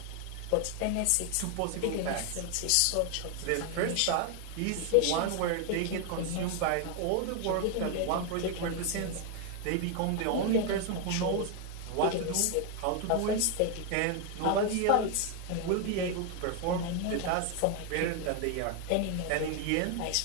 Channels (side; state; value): both; different; correlation 0.01